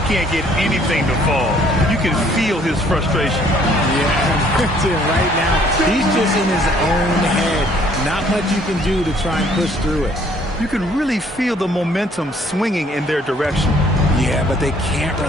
can't get anything to fall. You can feel his frustration. Yeah, right now, he's just in his own head. Not much you can do to try and push through it. You can really feel the momentum swinging in their direction. Yeah, but they can't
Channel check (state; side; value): normal; both; correlation 0.61